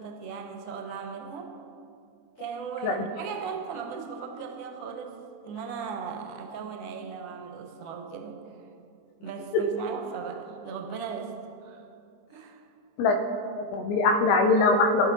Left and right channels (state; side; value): late; right; 24 ms